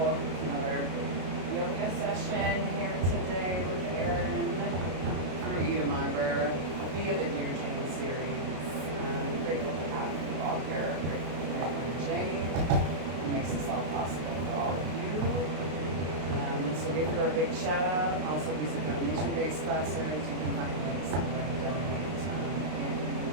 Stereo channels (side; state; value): left; late; 33 ms